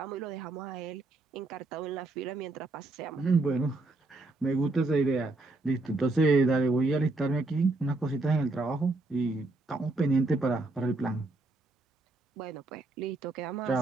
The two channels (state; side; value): quieter; left; 3.1 dB